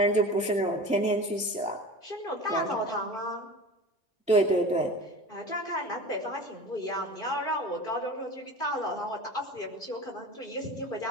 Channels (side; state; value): both; normal; correlation 0.35